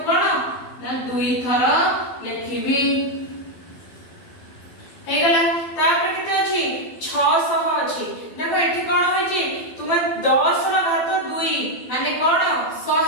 कोन ना 2 थर लिखिबी हे गला तापर केते अछि 600 अछि देखो एठी कोन होय छी तुमे 10 ର घात 2 माने कोन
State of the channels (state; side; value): late; right; 12 ms